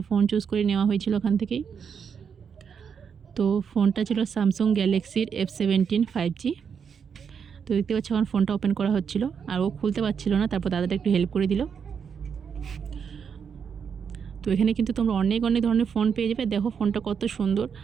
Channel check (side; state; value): left; quieter; 6.9 dB